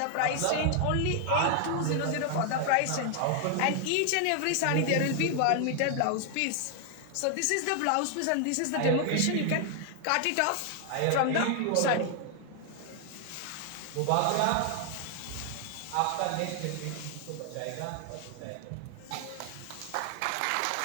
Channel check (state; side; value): different; both; correlation 0.00